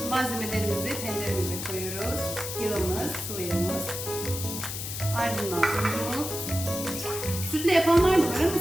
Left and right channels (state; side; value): noise; left; hiss, 6 dB below the sound